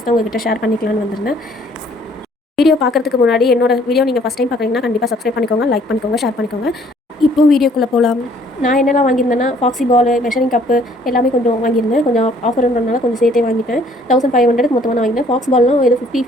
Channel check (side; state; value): both; normal; correlation 0.60